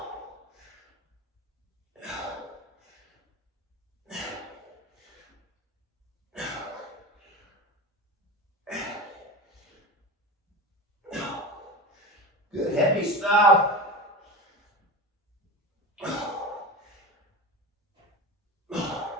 Good heavy stuff.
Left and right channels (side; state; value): both; normal; correlation 0.27